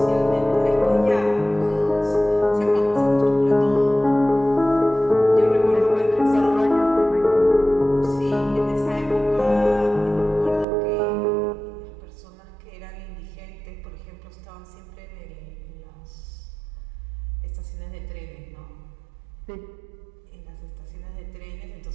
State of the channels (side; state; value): left; drops out; at 10.7 s